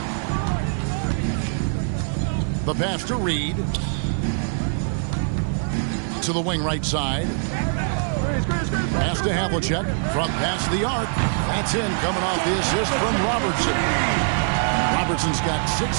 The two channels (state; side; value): silent; left; 63 dB below the other